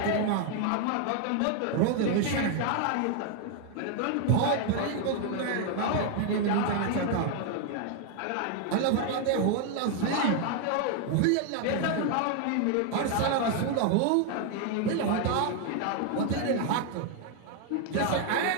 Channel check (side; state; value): both; different; correlation 0.01